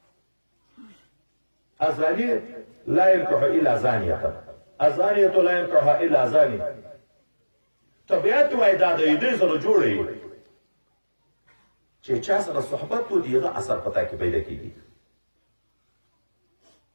الزاني لا ينكح الا زانيه، الزانيه لا ينكح الا زاني. طبیعت وای دا د دې سره جوړي چې چا سره صحبت و دیغه اثر پتا کې پیدا کیږي.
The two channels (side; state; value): both; inverted; correlation -1.00